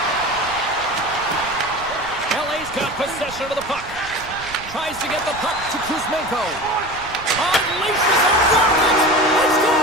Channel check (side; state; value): right; noise; rumble, 17 dB below the sound